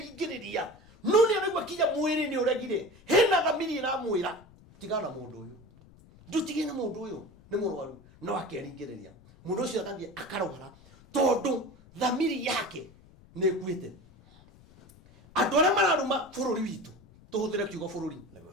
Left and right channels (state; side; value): noise; left; rumble, 25 dB below the sound